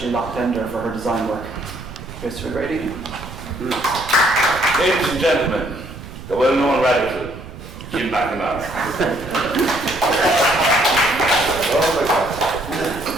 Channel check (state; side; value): noise; right; rumble, 13 dB below the sound